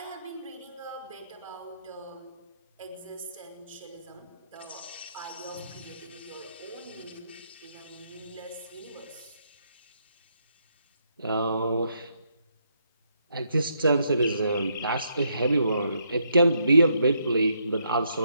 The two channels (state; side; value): inverted; both; correlation -0.76